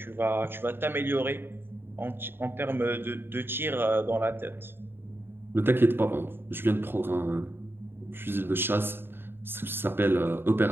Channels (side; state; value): left; late; 0.10 ms